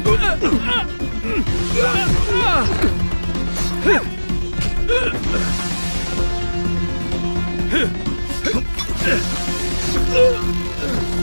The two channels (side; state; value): both; inverted; correlation -1.00